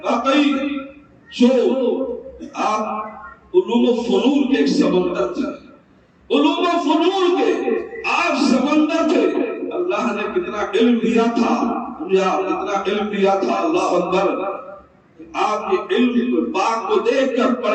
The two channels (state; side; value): identical; both; correlation 1.00